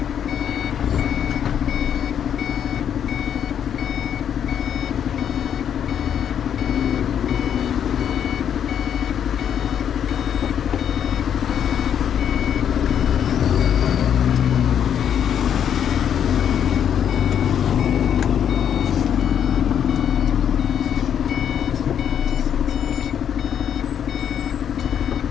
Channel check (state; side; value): quieter; right; 8.9 dB